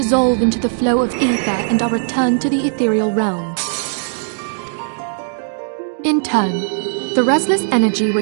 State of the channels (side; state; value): left; silent; digital silence